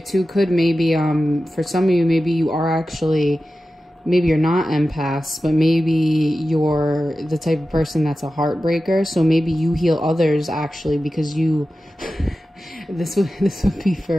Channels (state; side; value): normal; both; correlation 0.93